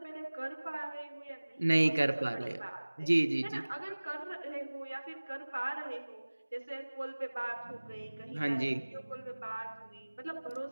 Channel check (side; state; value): both; inverted; correlation -1.00